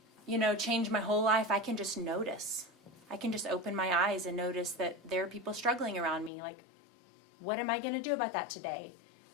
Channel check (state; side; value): drops out; right; at 6.3 s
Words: change my whole life. I can just notice. I can just open my eyes and notice that there are people struggling around me. Like, what am I going to do about that today?